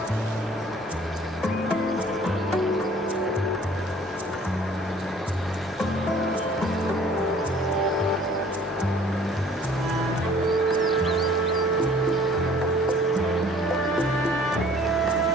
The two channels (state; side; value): normal; both; correlation 0.53